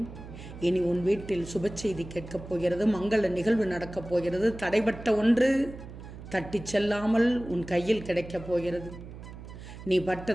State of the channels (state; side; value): noise; right; hum, 14 dB below the sound